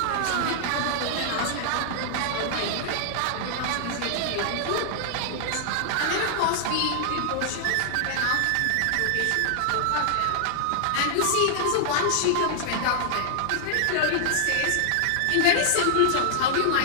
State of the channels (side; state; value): both; different; correlation -0.01